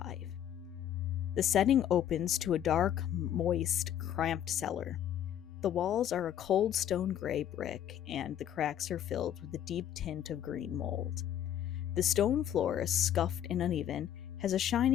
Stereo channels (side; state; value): right; quieter; 10.5 dB